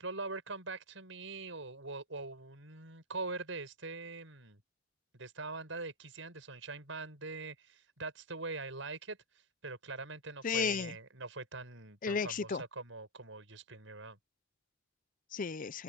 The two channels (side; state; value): both; normal; correlation 0.00